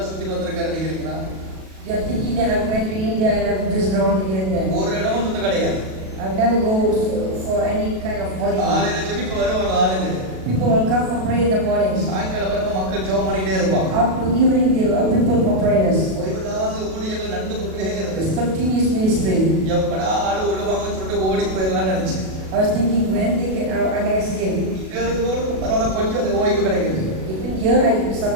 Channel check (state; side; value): late; left; 37 ms